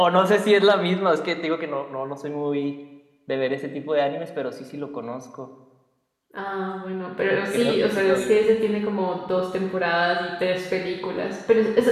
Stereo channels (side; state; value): both; identical; correlation 1.00